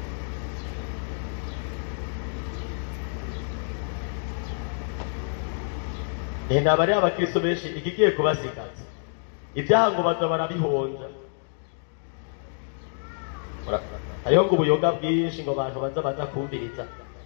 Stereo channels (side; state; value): right; silent; 60 dB below the other